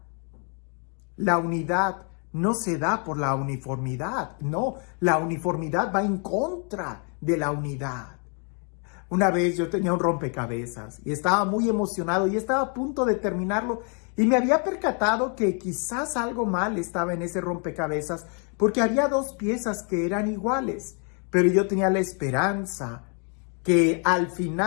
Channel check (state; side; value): quieter; right; 39.2 dB